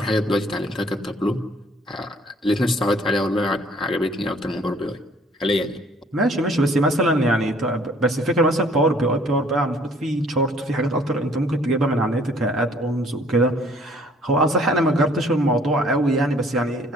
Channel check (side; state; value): both; normal; correlation 0.58